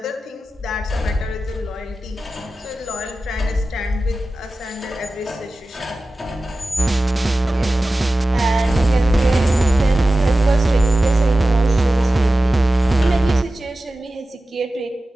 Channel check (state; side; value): normal; both; correlation 0.95